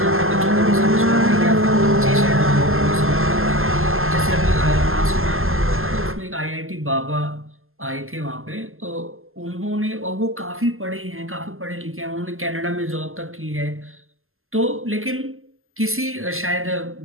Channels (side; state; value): left; late; 0.61 ms